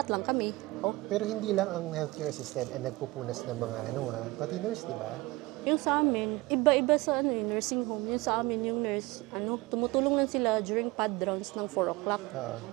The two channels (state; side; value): quieter; left; 21.6 dB